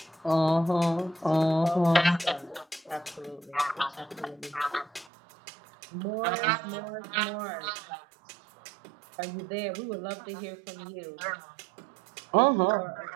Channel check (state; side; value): drops out; left; at 5.1 s